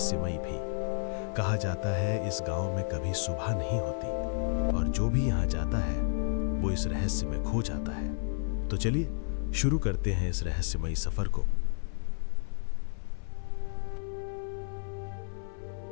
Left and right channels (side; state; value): right; silent; 55 dB below the other